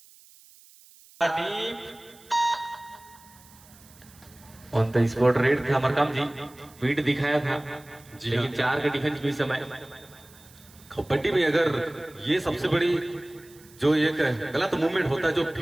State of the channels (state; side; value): noise; right; hiss, 25 dB below the sound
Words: ऑन द स्पॉट रेड था मरकाम जी, पीठ दिखाया था, लेकिन 4 के डिफेंस भी समय। कबड्डी में अगर ये सबसे बड़ी जो एक गलत मूवमेंट होता है, जो